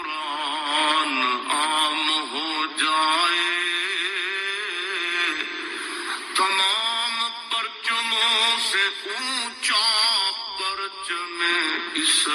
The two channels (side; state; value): both; identical; correlation 1.00